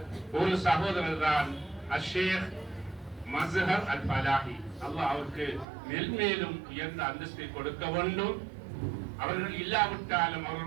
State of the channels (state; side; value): drops out; left; at 5.7 s